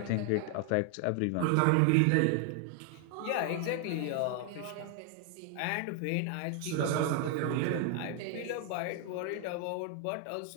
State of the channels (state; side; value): different; both; correlation 0.00